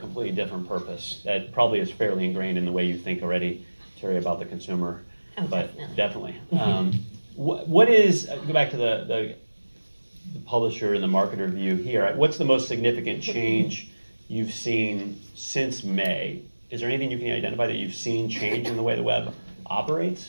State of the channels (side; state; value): both; inverted; correlation -1.00